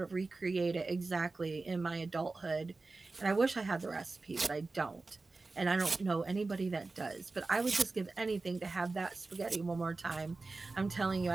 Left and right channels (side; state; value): left; quieter; 3.6 dB